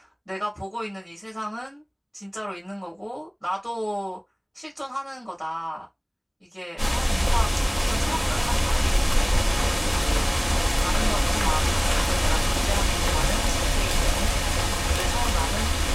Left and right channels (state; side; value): identical; both; correlation 1.00